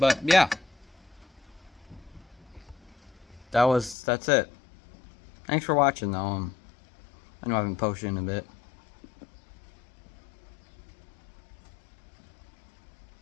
yeah. That's it. Thanks for watching though. I know I haven't posted in a bit.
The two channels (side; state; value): right; drops out; at 4.0 s